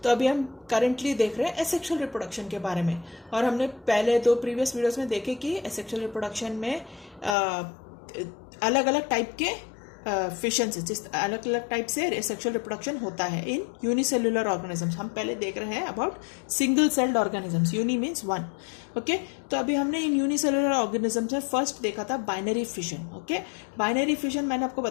अभी हम करेंटली देख रहे हैं एसेक्सुअल रिप्रोडक्शन के बारे में। और हमने पहले दो प्रीवियस वीडियोस में देखे कि एसेक्सुअल रिप्रोडक्शन में अलग अलग टाइप के फिशन से, जिस अलग अलग टाइप से सेक्सुअल रिप्रोडक्शन होता है इन यूनिसेल्युलर ऑर्गेनिजम्स। हम पहले देख रहे हैं about single celled organisms. Uni means one. Okay, तो अभी हमने इन यूनिसेल्युलर ऑर्गेनिजम्स में फर्स्ट देखा था binary fission. Okay, binary fission मैंने आपको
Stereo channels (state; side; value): drops out; right; at 7.4 s